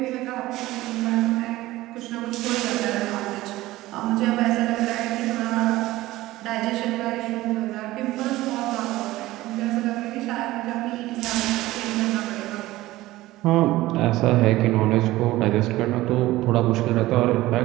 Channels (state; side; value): quieter; left; 17.3 dB